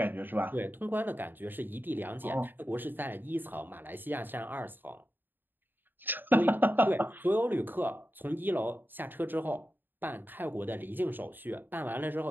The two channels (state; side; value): late; left; 0.093 ms